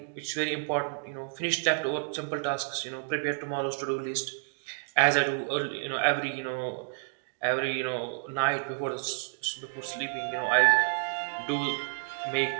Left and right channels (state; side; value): silent; left; digital silence